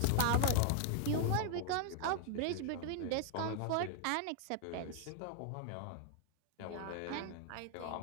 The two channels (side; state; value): both; different; correlation 0.00